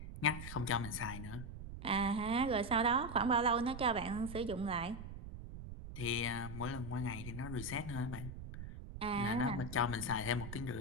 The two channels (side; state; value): right; noise; rumble, 10 dB below the sound